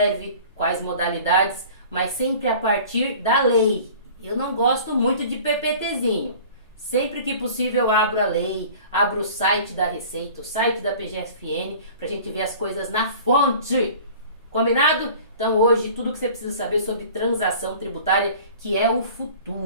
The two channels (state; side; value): inverted; both; correlation -0.44